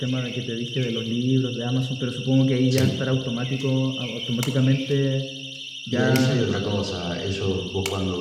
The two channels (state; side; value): identical; both; correlation 1.00